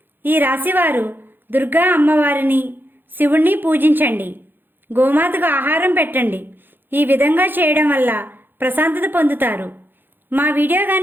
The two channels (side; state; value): left; late; 0.096 ms